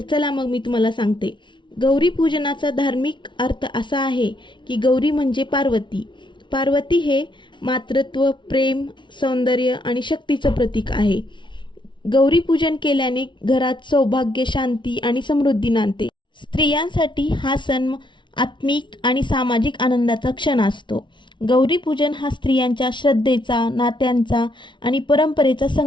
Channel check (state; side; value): late; right; 0.23 ms